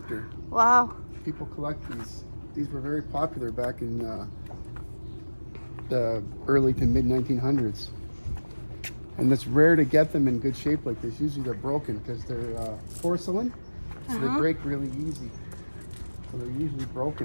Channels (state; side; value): inverted; both; correlation -1.00